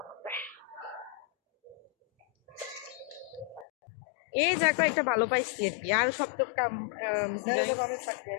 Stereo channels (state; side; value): drops out; right; at 3.7 s